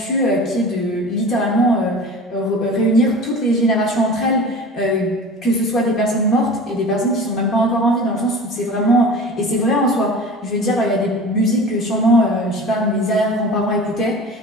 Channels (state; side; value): normal; both; correlation 0.37